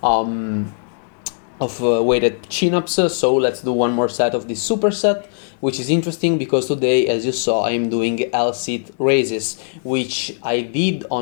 weighted chin-ups, so let's do one more set of this superset, which is interesting because today, as you saw, I'm doing L-sit raises, which I did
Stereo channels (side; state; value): right; silent; digital silence